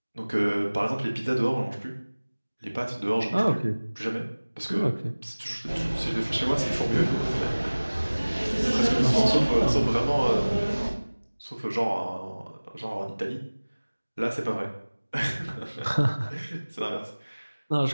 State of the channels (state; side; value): inverted; both; correlation -1.00